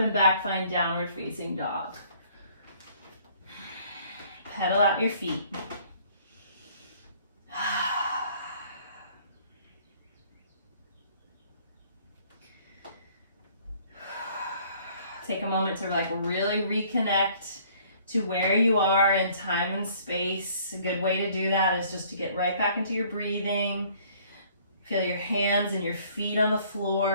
back. Find downward facing dog. Pedal out your feet. Take a moment to really reconnect to where you are in time and space. A good way to do that is just to get right back into your breathing. Feel your hands and your feet on the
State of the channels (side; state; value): both; inverted; correlation -0.58